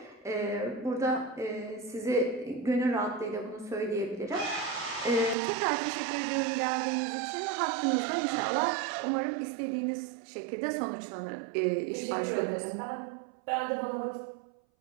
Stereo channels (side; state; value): left; drops out; at 5.4 s